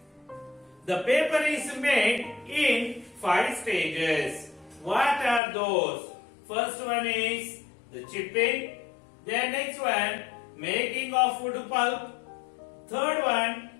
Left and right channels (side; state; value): right; drops out; at 5.4 s